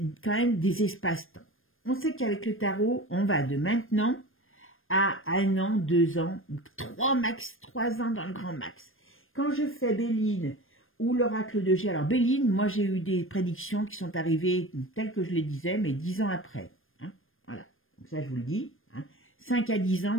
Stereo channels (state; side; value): late; right; 0.59 ms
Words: quand même des espaces-temps. On sait qu'avec le tarot, on va de maintenant à 1 an, 2 ans, 3 ans dans le grand max. Quand je fais Béline ou l'oracle de G, alors Béline, moi j'ai eu des prédictions qui sont arrivées telles que je les disais, mais 10 ans après. Hein, voilà. Donc ça, je vous le dis. Hein. 5 à 10 ans,